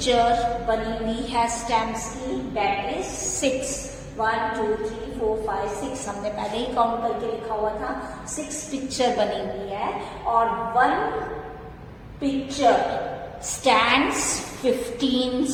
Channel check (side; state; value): both; identical; correlation 1.00